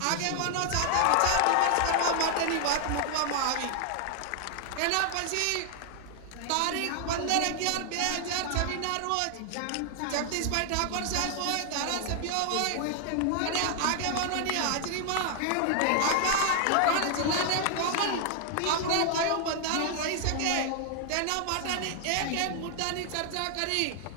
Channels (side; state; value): both; different; correlation 0.00